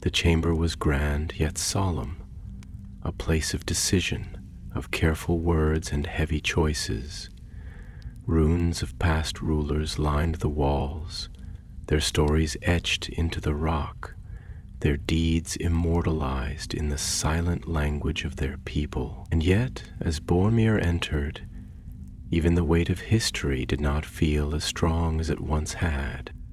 The chamber was grand yet solemn, a place of decision, of careful words and heavy choices. Runes of past rulers lined the walls, their stories etched into the rock, their deeds immortalized in the silent language of their people. And yet, as Boromir entered, even the weight of history did not feel as strong as it once had.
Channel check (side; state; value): both; identical; correlation 1.00